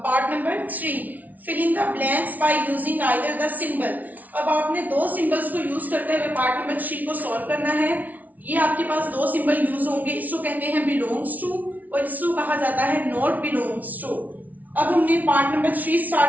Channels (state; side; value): late; left; 0.076 ms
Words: part number 3, fill in the blanks by using either the symbol. अब आपने दो सिंबल्स को यूज करते हुए पार्ट नंबर 3 को सॉल्व करना है। ये आपके पास दो सिंबल यूज होंगे, इसको कहते हैं बिलोंग्स टू और इसको कहा जाता है नॉट बिलोंग्स टू। अब हमने पार्ट नंबर 3